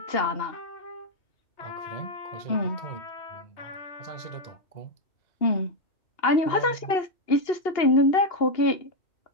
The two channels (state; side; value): late; right; 2.8 ms